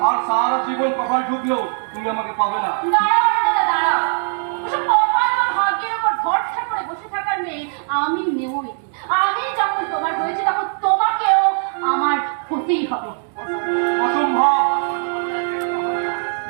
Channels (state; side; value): silent; left; 55 dB below the other